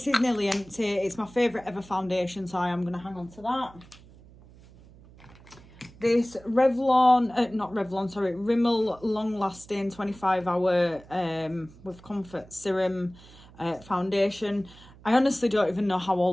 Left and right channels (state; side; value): noise; right; hum, 23 dB below the sound